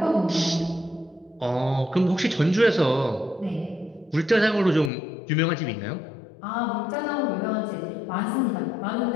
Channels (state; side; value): drops out; right; at 4.9 s